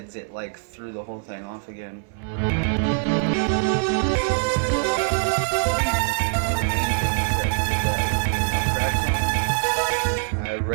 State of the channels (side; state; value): left; silent; 63 dB below the other